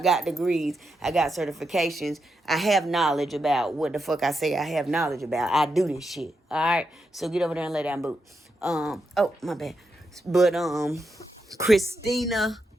degrees. I got certifications. I have knowledge about what the fuck I say I have knowledge about. I do this shit. All right? So get over there and lay down, boot. Oh, my bad. But, Christina,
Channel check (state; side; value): normal; both; correlation 0.85